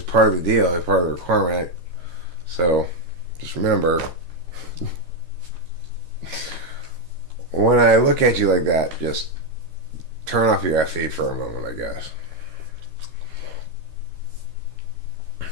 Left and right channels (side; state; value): left; late; 13 ms